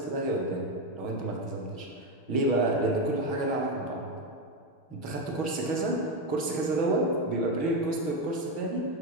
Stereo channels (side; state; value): right; late; 6.3 ms